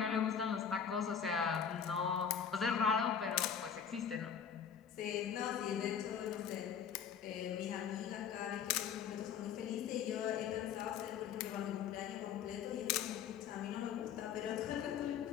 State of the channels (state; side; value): quieter; right; 7.7 dB